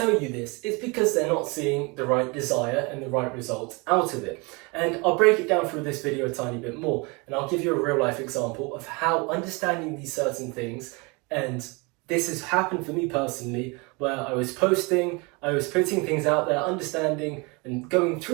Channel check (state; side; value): quieter; left; 28.3 dB